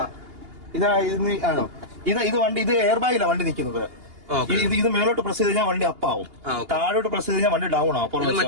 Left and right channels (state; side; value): late; left; 2.8 ms